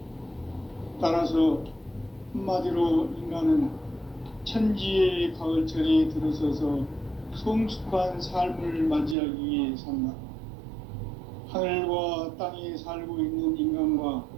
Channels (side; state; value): left; drops out; at 9.2 s